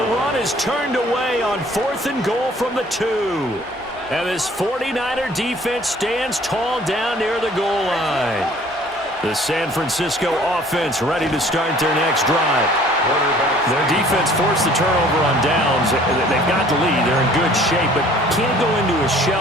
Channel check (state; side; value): normal; both; correlation 0.54